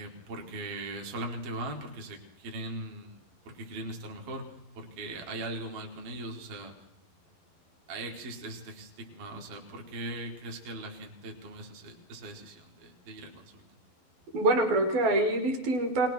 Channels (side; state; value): left; late; 11 ms